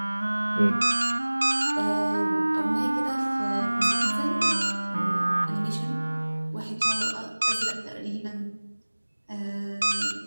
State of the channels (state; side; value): inverted; both; correlation -1.00